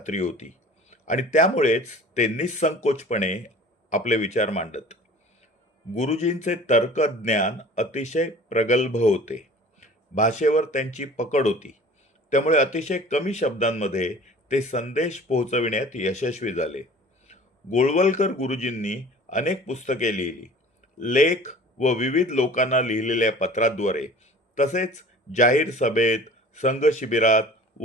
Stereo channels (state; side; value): normal; both; correlation 0.45